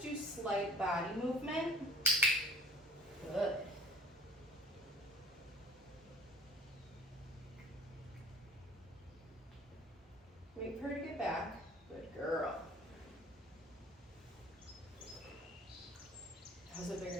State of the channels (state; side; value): normal; both; correlation 0.48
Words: do slight body movement. Good. Wait for her to get back. Good girl. That was a